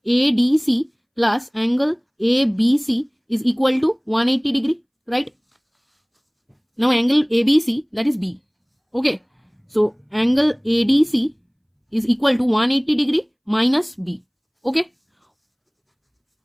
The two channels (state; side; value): identical; both; correlation 1.00